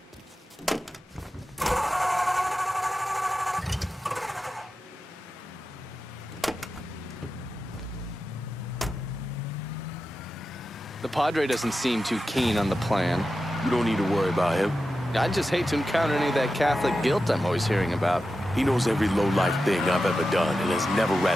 The Padre doesn't seem too keen on the plan. You don't need to worry about him. I'd just hate to encounter any of that Catholic guilt I'm always hearing about. He knows every low-life thing I've ever done and has never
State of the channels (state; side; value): normal; both; correlation 0.92